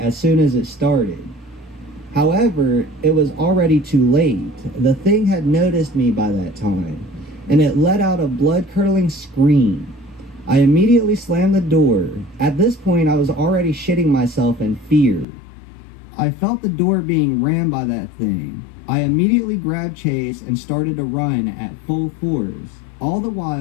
soon as it started. However, it was already too late. The thing had noticed me by that time, and it let out a blood-curdling scream. I immediately slammed the door. At this point, I was already shitting myself in fear. I felt the door being rammed by that thing. I immediately grabbed Chase and started to run at full force. All the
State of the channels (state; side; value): drops out; right; at 15.2 s